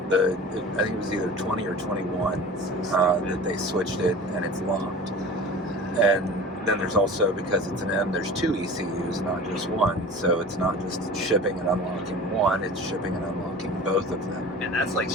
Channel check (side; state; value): both; normal; correlation 0.38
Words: the, I think it was either 20 or 21 that they switched it, and it's locked. And then there's also, because it's an M, there's 2 ECUs, not just one. So it's not just shipping and unlocking one, it's shipping and unlocking both of them. And that's like